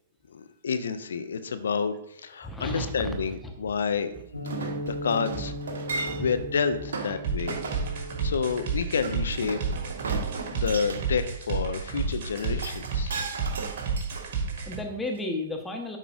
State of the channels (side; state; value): both; inverted; correlation -0.52